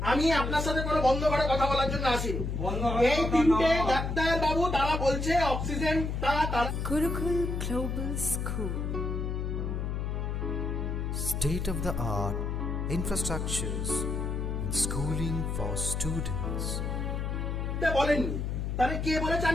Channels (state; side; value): noise; left; hum, 2 dB below the sound